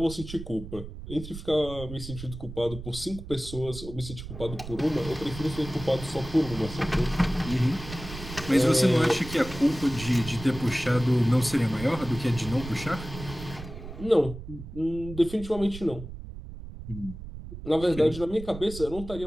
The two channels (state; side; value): noise; right; rumble, 12 dB below the sound